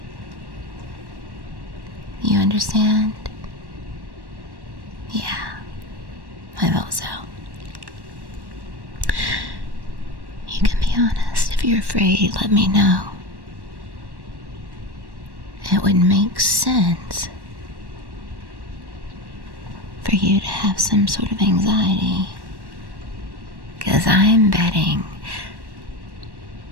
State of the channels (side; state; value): left; late; 1.1 ms